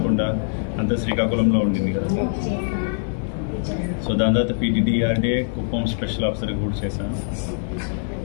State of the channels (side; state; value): right; silent; 63 dB below the other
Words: అంతా శ్రీకాకుళంలో ఉండింది కదా. సో దాని తర్వాత పీటీడీఆర్డీఏ కుప్పం స్పెషల్ ఆఫీసర్గా కూడా చేశాను.